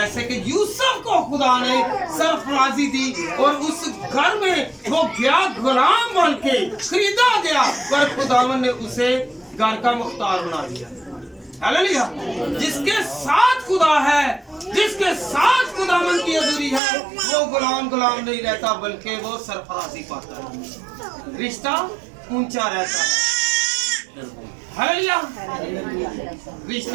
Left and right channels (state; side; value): drops out; left; at 16.8 s